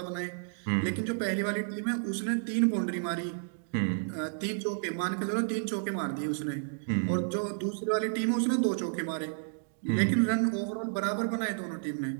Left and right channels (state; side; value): silent; left; digital silence